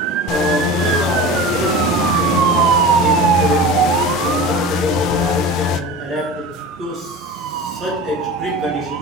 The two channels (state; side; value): normal; both; correlation 0.33